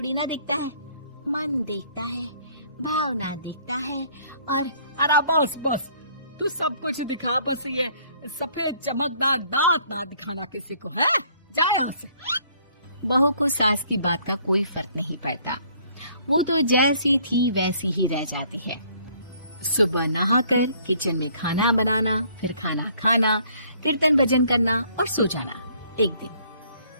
ना देखता है, मन देखता है, भावना देखता है। और अरे बस बस, तू सब कुछ दिखा, बस ये सफेद चमकदार दांत ना दिखाना किसी को, है? जा यहाँ से। बहू को सास की बात का कोई फर्क नहीं पड़ता। वो तो जैसी थी वैसी ही रह जाती है। सुबह नहाकर किचन में खाना बनाना, फिर खाना खाना, कीर्तन भजन करना और सो जाना। एक दिन,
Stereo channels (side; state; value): both; inverted; correlation -0.61